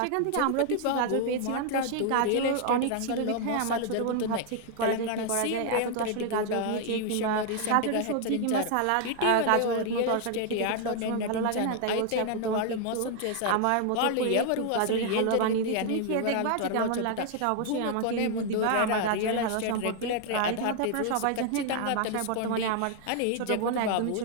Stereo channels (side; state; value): both; different; correlation 0.00